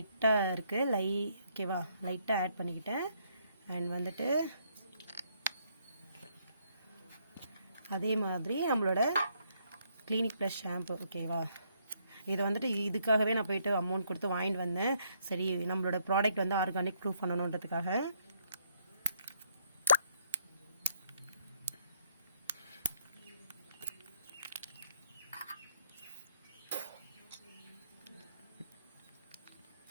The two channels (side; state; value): both; inverted; correlation -0.72